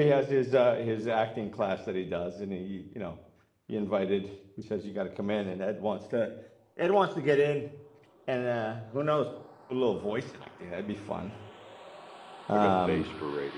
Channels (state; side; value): identical; both; correlation 1.00